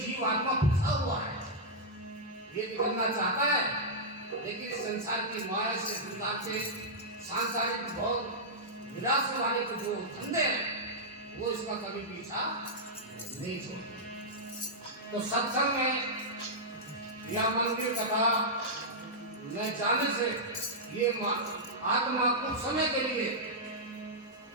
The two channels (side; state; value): both; normal; correlation -0.09